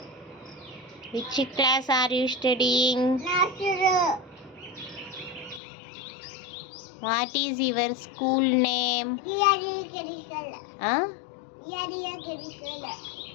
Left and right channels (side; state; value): right; drops out; at 5.6 s